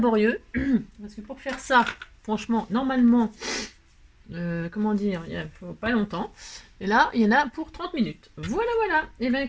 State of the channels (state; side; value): identical; both; correlation 1.00